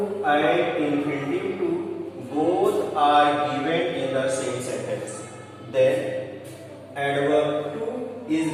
and infinitive to both are given in the same sentence, then adverb to is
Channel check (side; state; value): both; identical; correlation 1.00